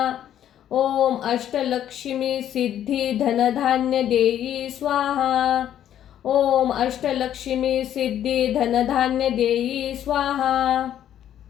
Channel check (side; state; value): right; quieter; 10.8 dB